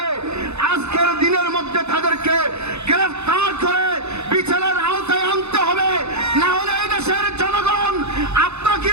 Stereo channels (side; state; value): left; late; 0.81 ms